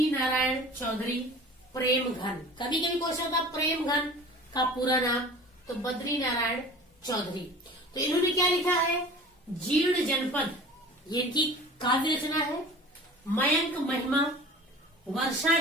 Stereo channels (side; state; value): both; normal; correlation 0.41